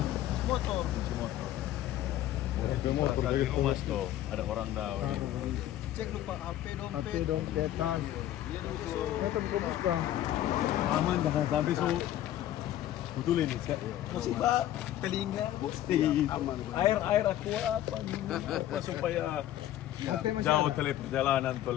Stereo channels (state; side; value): quieter; right; 12.9 dB